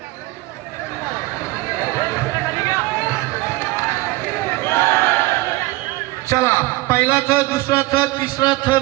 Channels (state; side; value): quieter; left; 19.9 dB